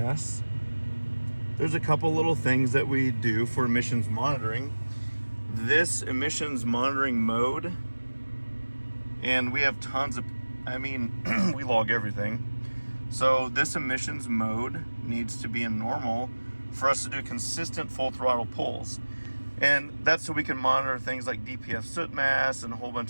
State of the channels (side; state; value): both; inverted; correlation -1.00